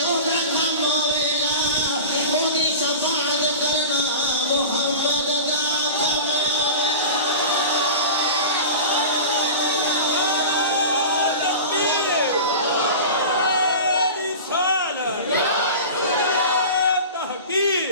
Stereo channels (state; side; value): inverted; both; correlation -0.33